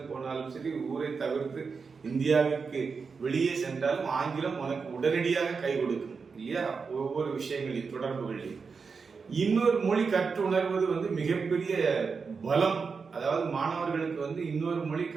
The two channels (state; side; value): quieter; left; 5.2 dB